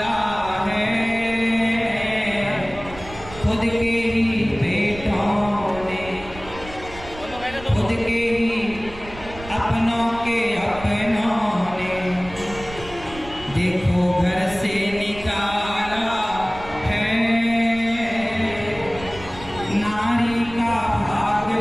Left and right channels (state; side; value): noise; right; rumble, 16 dB below the sound